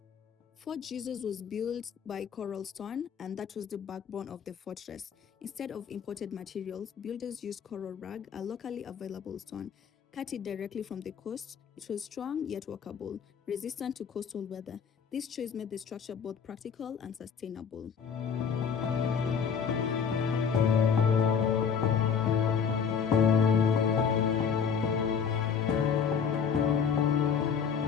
Fort Jesus was built by coral stone, and that was the backbone of the fortress. Instead of imported materials, builders used coral rag, a locally available stone. Cut it directly from the coast. It was strong yet workable, resistant to coastal weather. This choice made the structure both practical and sustainable.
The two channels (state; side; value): quieter; right; 6.8 dB